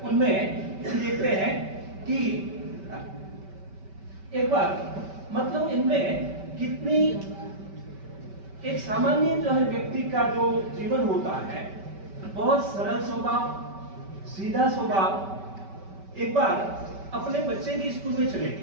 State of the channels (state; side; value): late; left; 5.2 ms